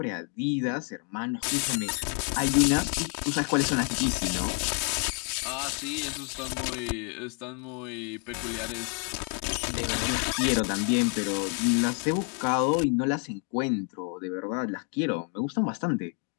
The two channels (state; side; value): quieter; right; 39.7 dB